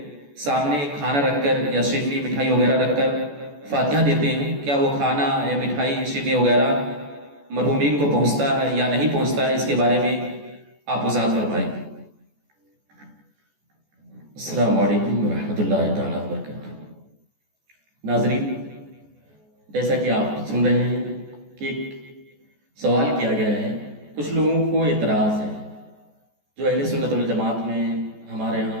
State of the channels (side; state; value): left; late; 14 ms